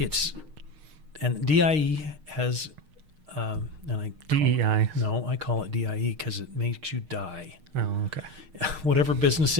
And DIE has, DEI. No, I call it DIE because it makes you die. Oh, okay. Whatever business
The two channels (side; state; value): left; late; 6.5 ms